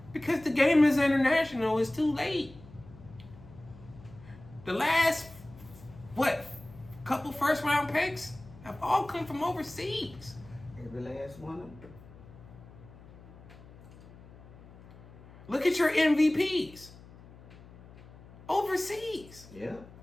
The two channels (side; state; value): left; noise; hum, 20 dB below the sound